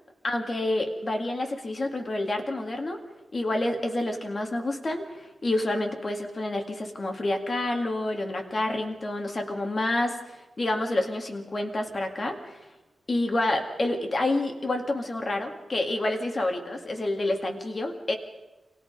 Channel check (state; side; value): normal; both; correlation 0.93